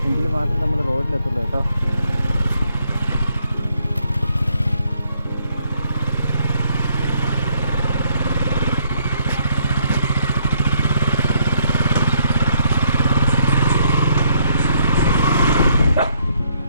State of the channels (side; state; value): both; inverted; correlation -0.70